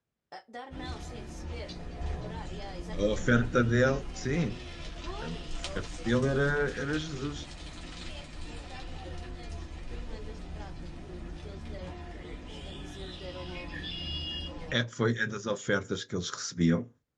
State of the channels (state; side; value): identical; both; correlation 1.00